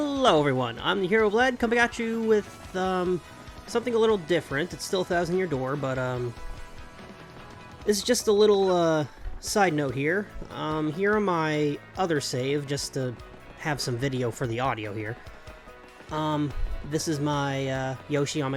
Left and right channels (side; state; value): both; identical; correlation 1.00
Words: everyone, I'm the Herooflead, coming at you with something a little different. It's still 1,000 Year Door, but this is just a little side note here. Here on my other save, just to have some video for the audio here. This is my Yoshi on